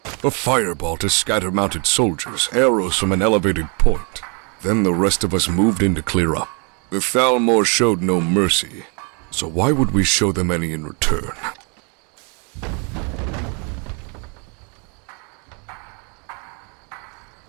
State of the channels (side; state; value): left; quieter; 35.1 dB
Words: A fireball to scatter mounted soldiers, arrows from an elevated point. Then the rest of us moved in to clear up. The Thalmor showed no mercy, so why would we show them any in return?